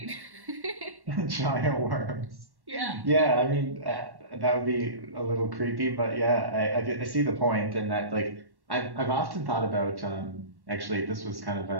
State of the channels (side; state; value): left; late; 1.1 ms